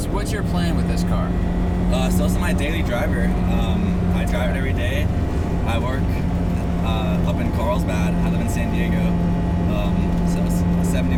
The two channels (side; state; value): both; identical; correlation 1.00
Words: your plan with this car? So this is my daily driver. I drive it every day. I work up in Carlsbad. I live in San Diego. So it's 70